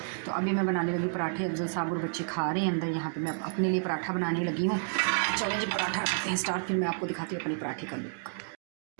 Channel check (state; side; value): silent; left; digital silence